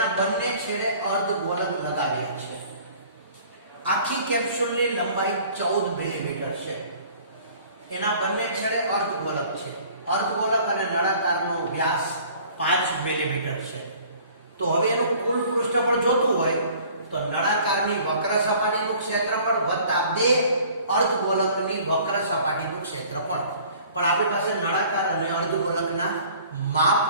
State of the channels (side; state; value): both; inverted; correlation -0.51